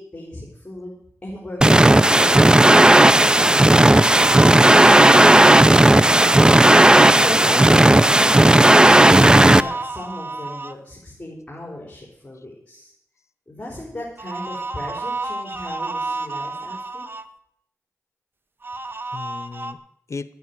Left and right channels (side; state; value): both; normal; correlation 0.85